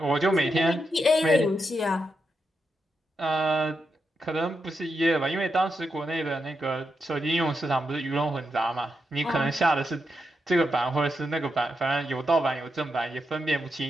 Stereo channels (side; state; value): both; normal; correlation 0.85